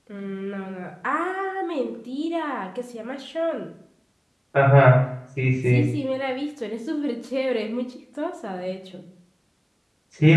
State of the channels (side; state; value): both; identical; correlation 1.00